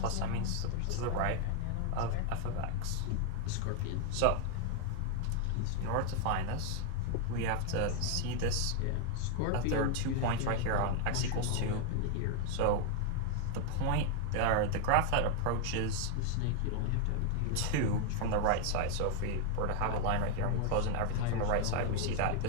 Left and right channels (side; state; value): both; different; correlation 0.00